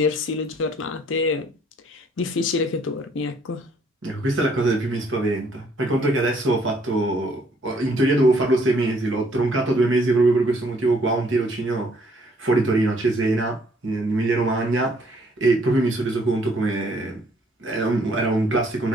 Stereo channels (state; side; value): normal; both; correlation 0.64